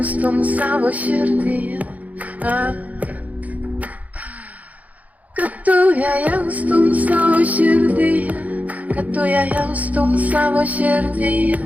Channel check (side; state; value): left; late; 0.074 ms